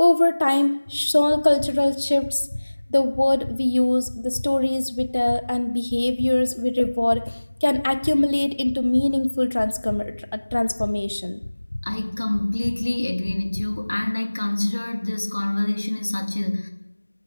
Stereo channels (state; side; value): inverted; both; correlation -1.00